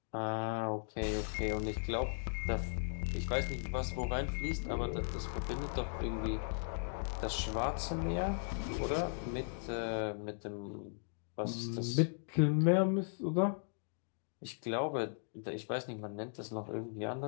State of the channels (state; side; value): silent; right; digital silence